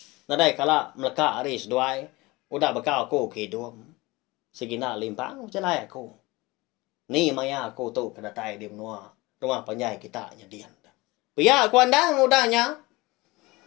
Nadai kala melekak hari seduai. Udah bekal aku ke hidup. Segina limpang celai aku. Ni maya aku tu kedatai di menua. Rumah penjai kita nyadian. Pihak aku andang udahnya.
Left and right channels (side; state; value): right; quieter; 22.3 dB